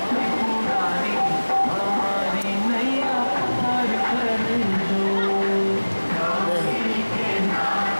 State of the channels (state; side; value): inverted; both; correlation -1.00